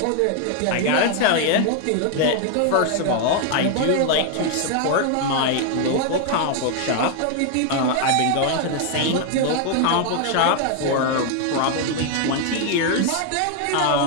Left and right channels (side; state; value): both; different; correlation 0.00